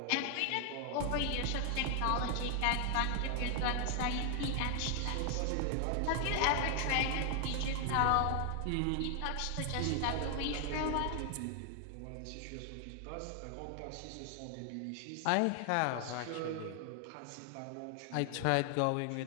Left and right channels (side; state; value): both; different; correlation 0.00